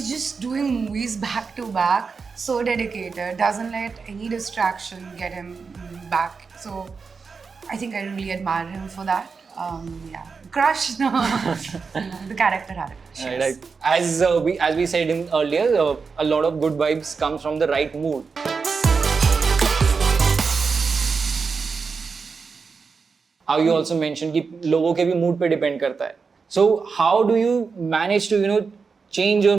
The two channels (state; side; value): quieter; left; 5.1 dB